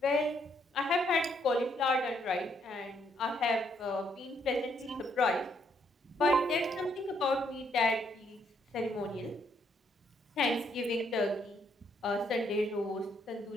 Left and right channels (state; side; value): normal; both; correlation 0.72